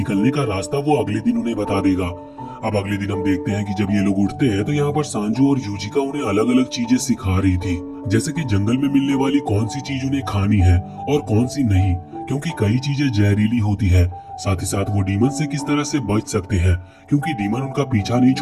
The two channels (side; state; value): both; identical; correlation 1.00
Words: का रास्ता वो अगले दिन उन्हें बता देगा। अब अगले दिन हम देखते हैं कि जब ये लोग उठते हैं तो यहाँ पर सांजू और यूजिका उन्हें अलग अलग चीजें सिखा रही थी, जैसे कि जंगल में मिलने वाली कौन सी चीज उन्हें खानी है और कौन सी नहीं, क्योंकि कई चीजें जहरीली होती है। साथ ही साथ वो डीमन से किस तरह से बच सकते हैं, क्योंकि डीमन उनका पीछा नहीं